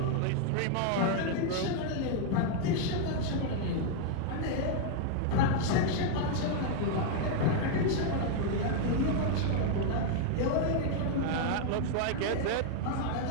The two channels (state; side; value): different; both; correlation 0.00